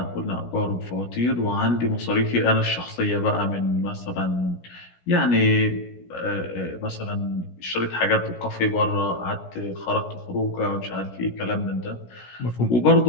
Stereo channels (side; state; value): right; late; 16 ms